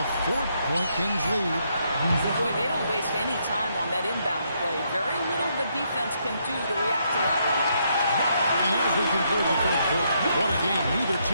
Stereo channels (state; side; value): inverted; both; correlation -0.75